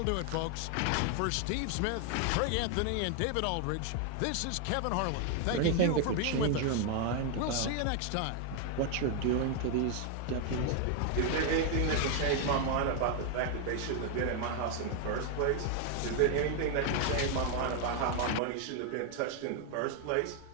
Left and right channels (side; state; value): both; different; correlation 0.00